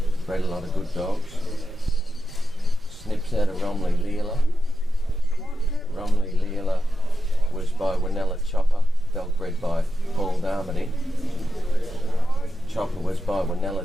Bred a lot of good dogs. Snips out of Romley Leela. Romley Leela was by Winella Chopper, dog bred by Paul Darmody. Chopper was by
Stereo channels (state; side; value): normal; both; correlation 0.89